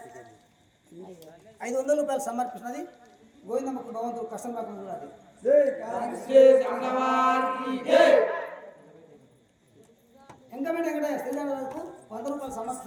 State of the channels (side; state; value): both; identical; correlation 1.00